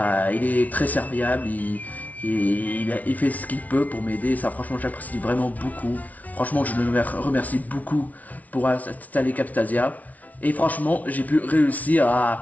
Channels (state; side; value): late; right; 0.072 ms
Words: il est très serviable, il fait ce qu'il peut pour m'aider, ça franchement j'apprécie vraiment beaucoup. Franchement je le remercie beaucoup pour installer Camtasia. Et franchement j'ai pu réussir